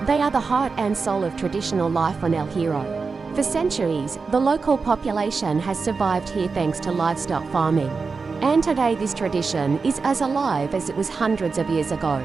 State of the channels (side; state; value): left; quieter; 4.7 dB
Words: They are the heart and soul of traditional life on El Hierro. For centuries, the local population has survived here thanks to livestock farming. And today this tradition is as alive as it was hundreds of years ago.